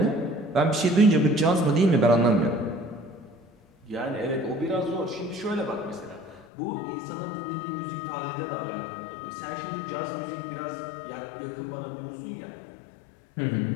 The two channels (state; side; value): drops out; right; at 6.5 s